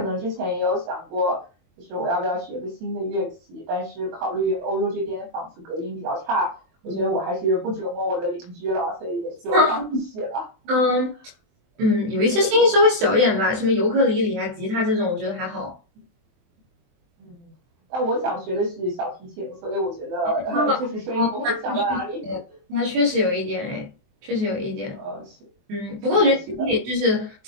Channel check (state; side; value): late; left; 23 ms